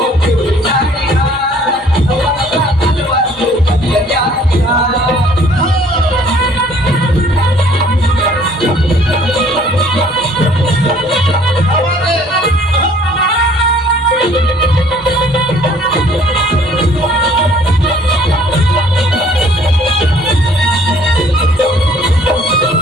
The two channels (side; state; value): both; normal; correlation 0.57